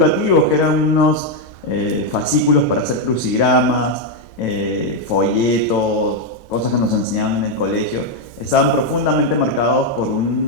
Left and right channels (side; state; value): right; late; 2.1 ms